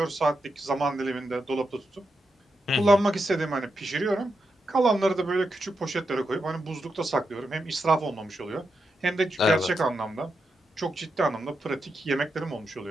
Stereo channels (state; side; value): normal; both; correlation 0.86